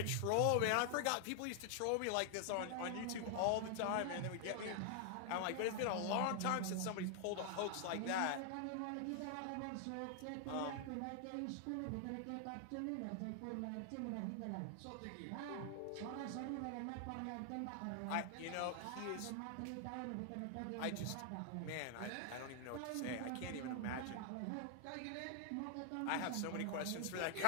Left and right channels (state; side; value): different; both; correlation 0.00